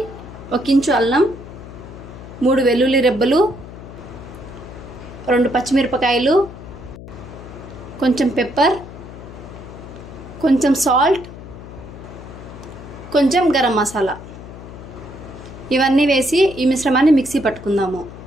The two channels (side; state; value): left; noise; hum, 14 dB below the sound